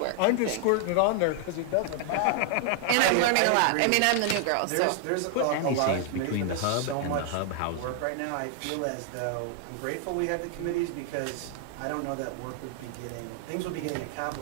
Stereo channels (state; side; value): different; both; correlation 0.00